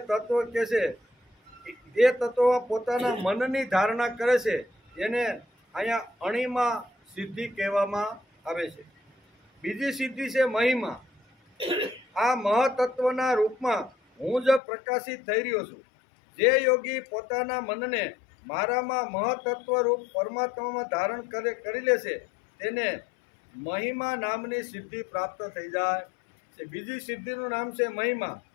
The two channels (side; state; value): right; drops out; at 14.6 s